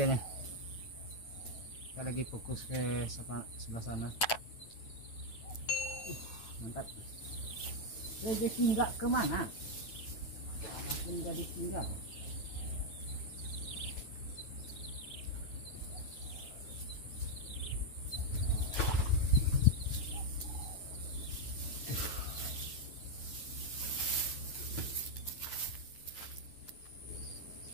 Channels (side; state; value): right; late; 9.2 ms